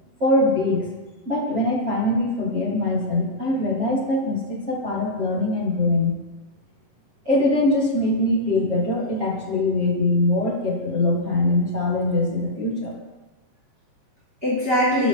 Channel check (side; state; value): left; late; 7.3 ms